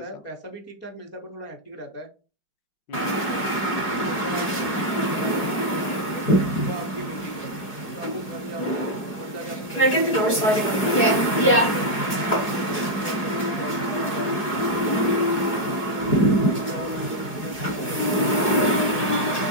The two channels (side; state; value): right; late; 4.8 ms